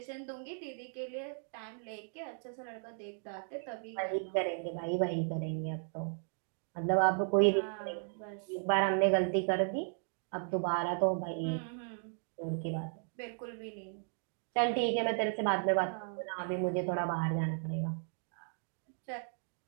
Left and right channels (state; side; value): silent; left; 54 dB below the other